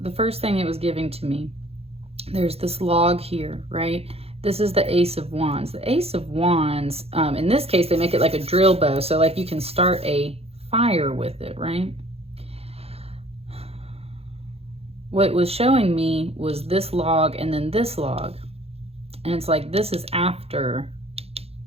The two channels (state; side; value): late; left; 0.29 ms